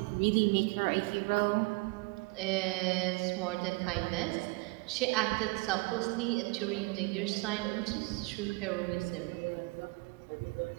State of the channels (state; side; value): quieter; left; 26.6 dB